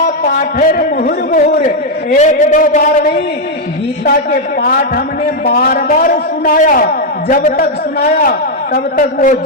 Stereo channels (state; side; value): normal; both; correlation 0.00